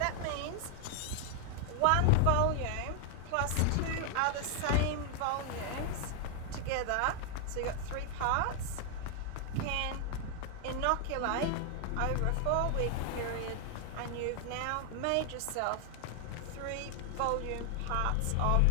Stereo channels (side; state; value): both; different; correlation 0.00